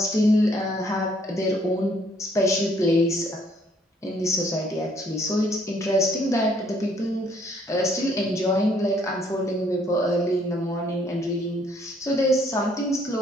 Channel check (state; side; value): normal; both; correlation 0.65